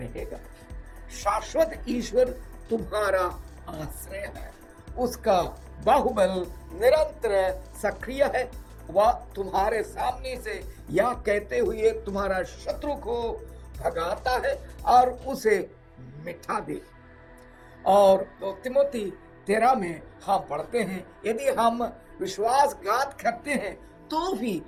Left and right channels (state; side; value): identical; both; correlation 1.00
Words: शाश्वत ईश्वर तुम्हारा आश्रय है, उसका बाहुबल निरंतर सक्रिय है। वह तुम्हारे सामने से यह कहते हुए तुम्हारा शत्रु को भगाता है और उसे मिटा दे। और 2 तिमोथी 13 में हम पढ़ते हैं, यदि हम विश्वासघात करते हैं तो भी